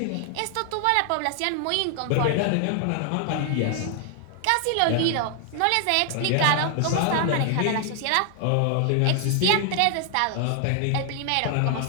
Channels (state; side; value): different; both; correlation 0.00